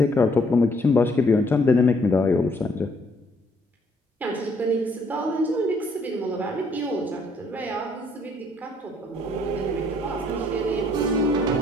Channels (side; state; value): both; normal; correlation 0.66